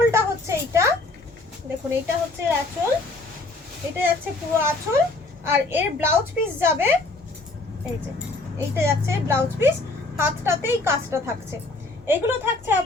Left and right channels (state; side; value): quieter; right; 3.2 dB